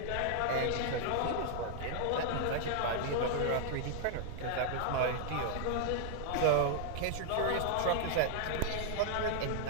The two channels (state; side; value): different; both; correlation -0.01